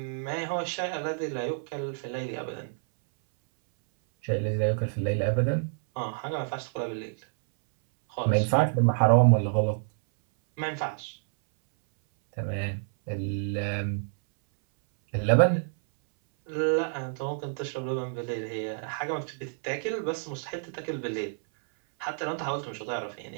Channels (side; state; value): left; silent; 59 dB below the other